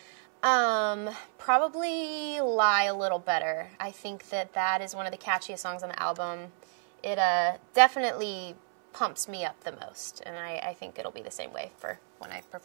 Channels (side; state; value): left; silent; 58 dB below the other